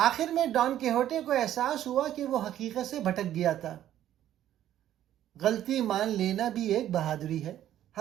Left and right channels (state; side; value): quieter; left; 11.9 dB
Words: میں ڈان کیہوٹے کو احساس ہوا کہ وہ حقیقت سے بھٹک گیا تھا۔ غلطی مان لینا بھی ایک بہادری ہے۔